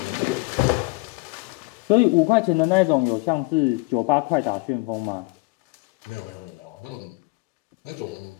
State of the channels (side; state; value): right; quieter; 26.4 dB